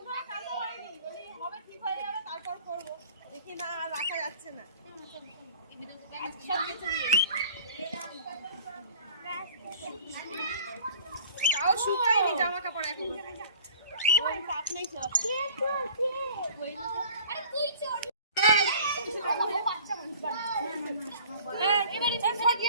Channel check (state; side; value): inverted; both; correlation -0.48